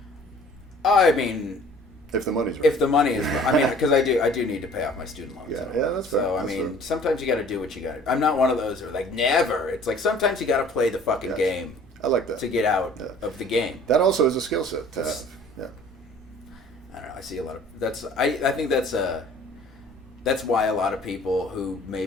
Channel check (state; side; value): normal; both; correlation 0.51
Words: I mean, if the money's right. If the money is, I mean, because I do need to pay off my student loans. Yeah, that's fair. So I mean, sometimes you got to do what you got to. I'm not one of those who are like never. It's like sometimes you got to play the fucking game. I like that to get out of the game. That also is a skill set to have. Yeah. I don't know. I see a lot of that's. I think that's why a lot of people who